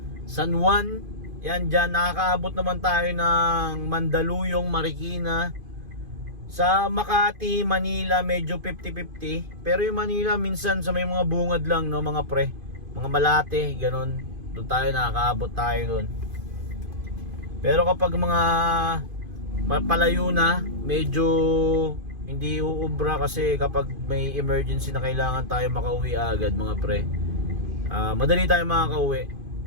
San Juan. Yan dyan, nakakaabot naman tayo ng Mandaluyong, Marikina. Sa Makati, Manila, medyo 50-50. Pero yung Manila, minsan sa may mga bungad lang, no, mga pre. Mga Malate, ganun. Doon tayo, nakakaabot tayo doon. Pero kapag mga palayo na, medyo hindi uubra kasi kapag may emergency na kailangan tayo makauwi agad, mga pre. Madali tayo makakauwi.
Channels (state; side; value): late; left; 2.5 ms